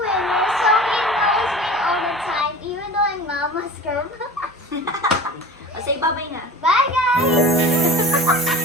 winner. So he always win all the time, even though I'm Mama's girl. say bye-bye na.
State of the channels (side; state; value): both; normal; correlation 0.38